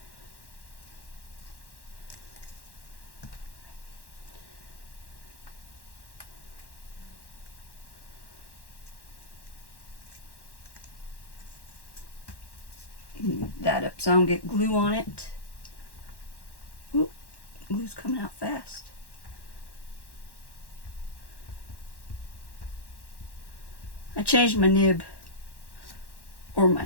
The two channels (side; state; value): right; late; 1.1 ms